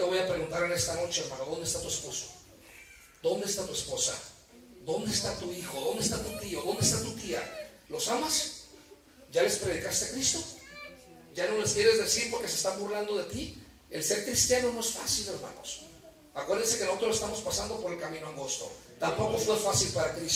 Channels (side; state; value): both; identical; correlation 1.00